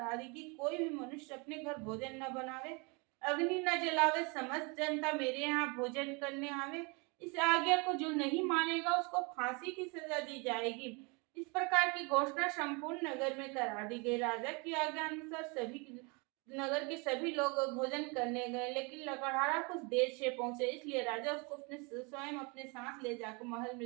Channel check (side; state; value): left; quieter; 30.4 dB